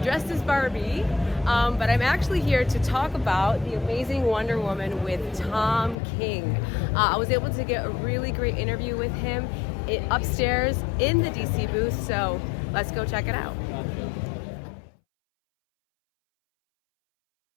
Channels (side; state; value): right; drops out; at 6.0 s